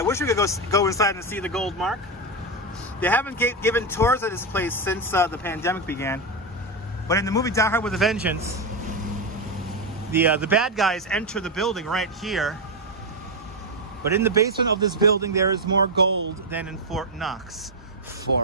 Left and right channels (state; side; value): normal; both; correlation 0.08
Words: wish we could go inside and see the gold mark. They haven't given tours of this place since the pandemic began. But in the movie Die Hard with a Vengeance, the bad guys enter the building right here. But in the basement of this building, there is more gold than in Fort Knox.